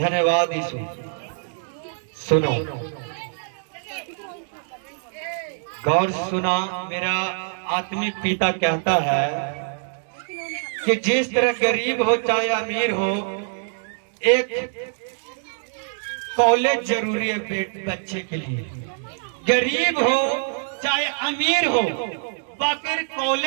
यीशु। सुनो, गौर सुना, मेरा आत्मिक पिता कहता है कि जिस तरह गरीब हो चाहे अमीर हो, एक कॉलेज जरूरी है बच्चे के लिए। गरीब हो चाहे अमीर हो, बाकी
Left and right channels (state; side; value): silent; left; digital silence